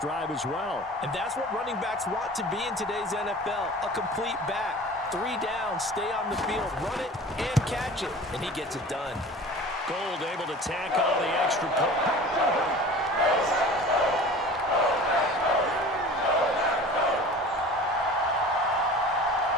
as well. And that's what running backs want to be in today's NFL, a complete back. 3 down, stay on the field, run it, and catch it. And he gets it done. Gold able to tack on the extra point.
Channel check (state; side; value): normal; both; correlation 0.41